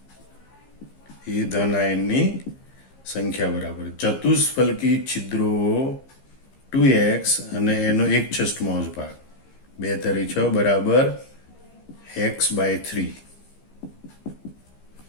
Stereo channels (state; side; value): late; right; 15 ms